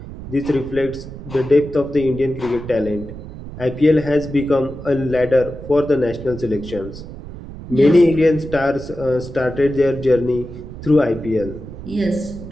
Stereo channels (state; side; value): noise; right; rumble, 12 dB below the sound